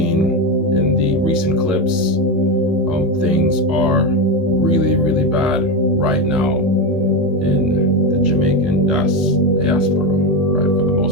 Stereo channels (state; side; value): normal; both; correlation 0.14